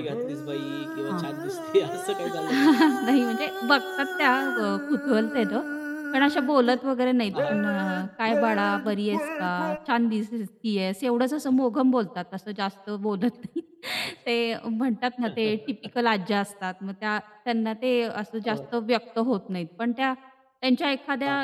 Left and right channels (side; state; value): both; identical; correlation 1.00